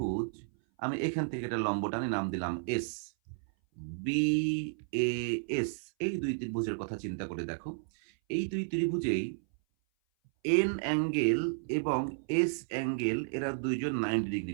আমি এখান থেকে একটা লম্ব টানি, নাম দিলাম এস, বি এ এস। এই দুই ত্রিভুজের কথা চিন্তা করে দেখো, এই দুই ত্রিভুজেই এন অ্যাঙ্গেল এবং এস অ্যাঙ্গেল, এরা দুইজন 90 ডিগ্রি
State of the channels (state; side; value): silent; left; 56 dB below the other